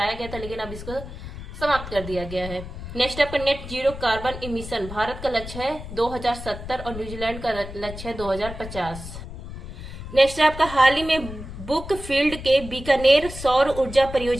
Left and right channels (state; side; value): noise; left; rumble, 11 dB below the sound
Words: गया था, लेकिन अब इसको समाप्त कर दिया गया है। नेक्स्ट आपका net zero carbon emission. Bharat का लक्ष्य है 2070 और न्यूजीलैंड का लक्ष्य है 2050। नेक्स्ट है आपका, हाल ही में बुक फील्ड के बीकानेर सौर ऊर्जा